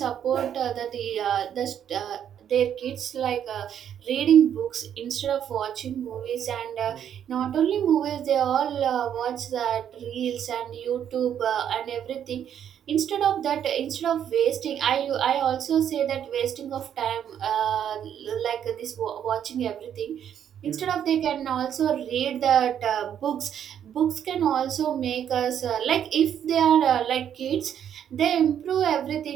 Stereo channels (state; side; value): quieter; left; 9.3 dB